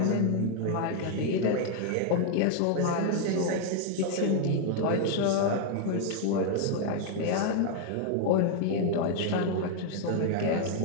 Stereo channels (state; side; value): different; both; correlation 0.00